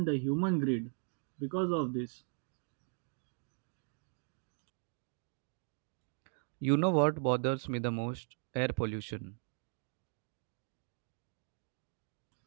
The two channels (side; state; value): left; silent; 52 dB below the other